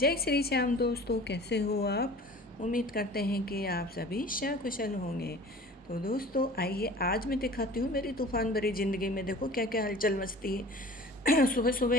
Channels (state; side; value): normal; both; correlation 0.43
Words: श्री श्याम दोस्तों, कैसे हो आप? उम्मीद करते हैं कि आप सभी सकुशल होंगे। तो दोस्तों आइए आज मैं दिखाती हूँ मेरी तूफ़ान भरी ज़िंदगी में देखो क्या क्या हलचल मचती है। सुबह सुबह